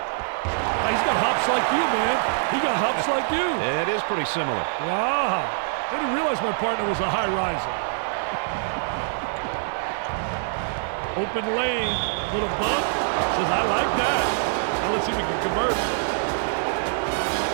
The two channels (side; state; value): left; silent; 60 dB below the other